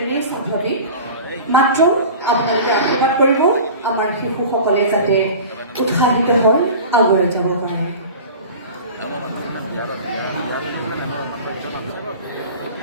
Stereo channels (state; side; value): inverted; both; correlation -0.37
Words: স্বাভাৱিক, মাত্ৰ আপোনালোকে আশীৰ্বাদ কৰিব আমাৰ শিশুসকলে যাতে উৎসাহিত হৈ আগুৱাই যাব পাৰে।